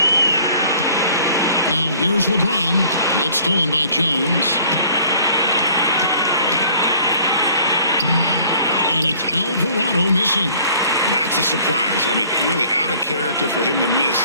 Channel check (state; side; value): inverted; both; correlation -0.54